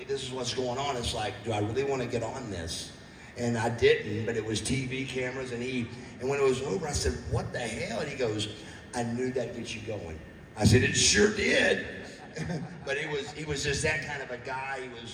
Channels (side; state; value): both; identical; correlation 1.00